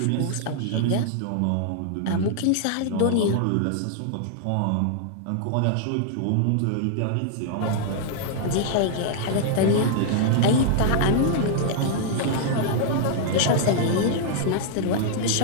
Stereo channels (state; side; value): different; both; correlation -0.01